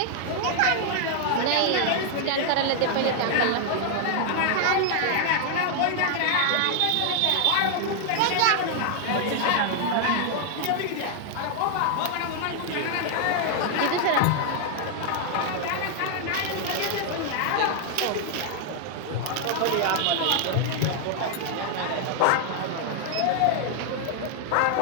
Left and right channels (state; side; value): different; both; correlation 0.00